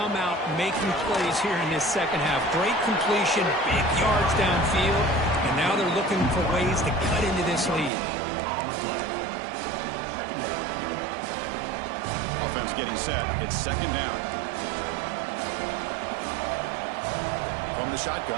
out making plays here in this second half. Great completion, big yards downfield, and now they're looking for ways to cut into this lead. Offense getting set. It's second down. From the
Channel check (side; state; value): left; drops out; at 7.9 s